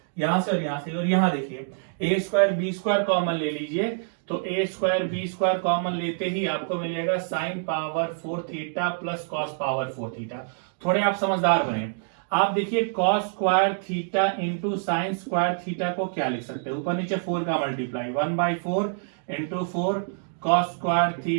यहां से और यहां देखिए a square b square common ले लीजिए. तो a square b square common लेते ही आपको मिलेगा sine power 4 theta plus cos power 4 theta. थोड़े आप समझदार बने. आप देखिए cos square theta into sine square theta को क्या लिख सकते हैं, ऊपर नीचे 4 का multiply 1/4 into 4 cos square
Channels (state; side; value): silent; left; digital silence